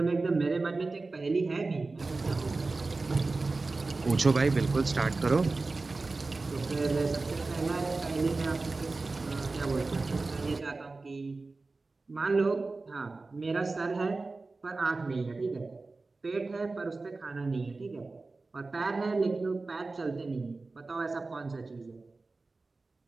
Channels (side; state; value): left; quieter; 3.6 dB